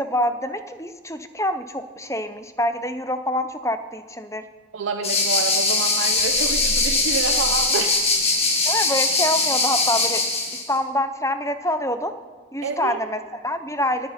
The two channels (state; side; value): normal; both; correlation 0.06